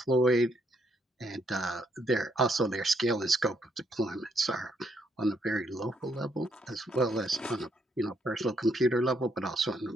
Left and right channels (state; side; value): normal; both; correlation 0.74